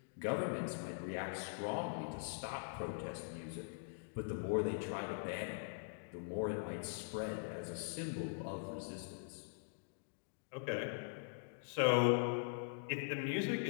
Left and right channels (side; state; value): right; silent; digital silence